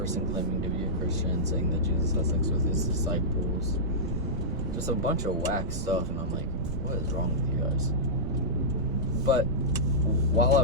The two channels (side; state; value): right; noise; rumble, 5 dB below the sound